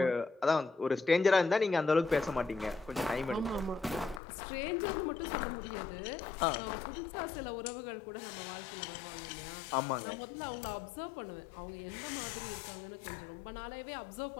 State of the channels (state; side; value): drops out; right; at 4.2 s